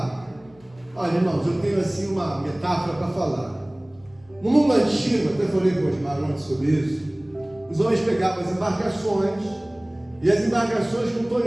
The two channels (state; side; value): noise; left; hum, 28 dB below the sound